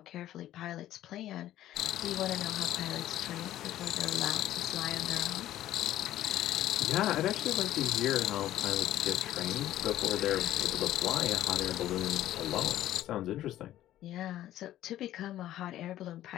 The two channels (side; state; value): right; quieter; 13.3 dB